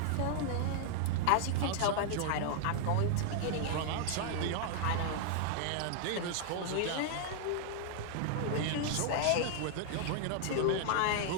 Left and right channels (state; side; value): different; both; correlation 0.00